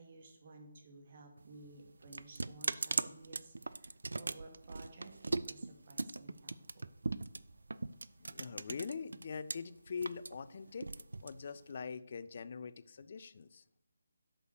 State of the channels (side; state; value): both; inverted; correlation -0.91